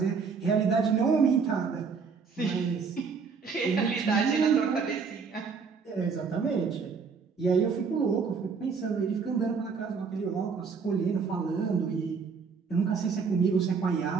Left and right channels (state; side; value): quieter; left; 5.4 dB